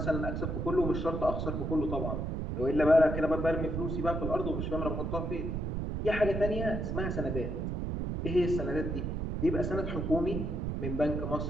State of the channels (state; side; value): noise; right; rumble, 2 dB below the sound